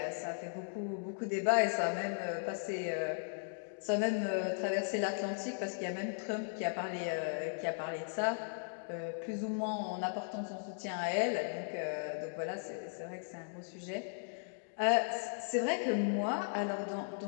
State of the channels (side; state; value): right; silent; digital silence